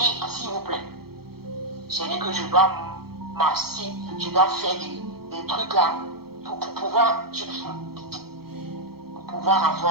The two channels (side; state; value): left; late; 0.95 ms